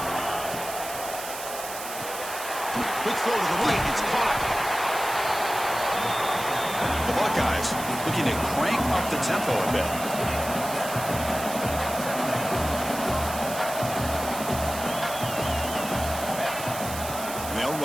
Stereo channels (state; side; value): noise; right; hiss, 9 dB below the sound